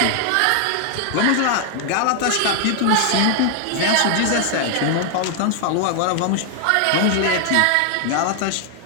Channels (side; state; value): both; different; correlation 0.00